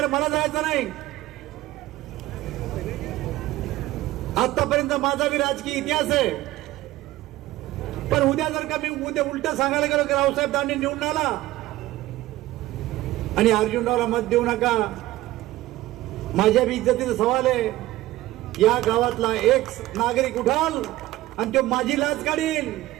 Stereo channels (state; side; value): quieter; left; 16.7 dB